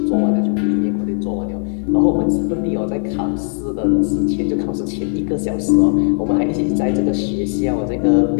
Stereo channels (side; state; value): right; silent; 56 dB below the other